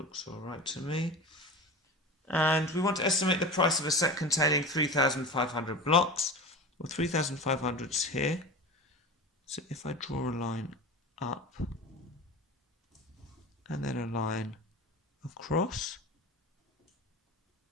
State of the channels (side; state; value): both; normal; correlation 0.30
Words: all right to me. And we want to estimate the price of a set containing 3,500 blocks. Well, 3,500 is here. So if I draw a line up and then a line across,